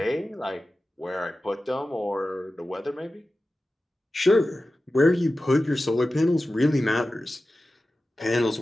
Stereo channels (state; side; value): normal; both; correlation 0.94